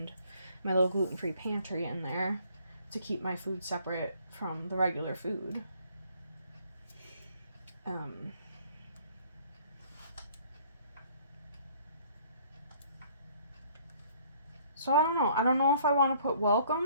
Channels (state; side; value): inverted; both; correlation -0.59